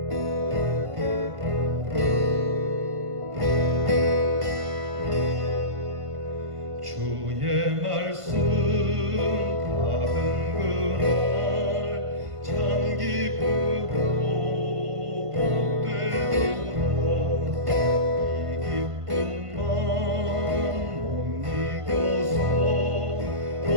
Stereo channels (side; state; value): left; late; 1.5 ms